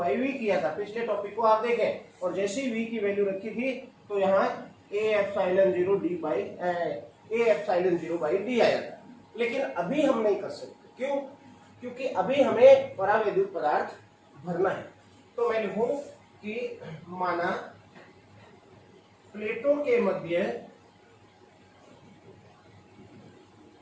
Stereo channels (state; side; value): identical; both; correlation 1.00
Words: V किया था। पिछले टॉपिक को आप देखें और जैसे ही V की वैल्यू रखी थी तो यहाँ ए epsilon 0 D by A epsilon 0 by D आया था। लेकिन अभी हम नहीं कर सकते, क्यों? क्योंकि अभी हमें परावैद्युत पदार्थ भरना है। तो मैं लिखूं कि माना प्लेटों के मध्य